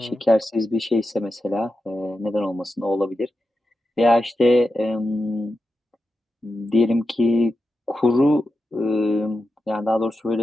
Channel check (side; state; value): both; normal; correlation 0.90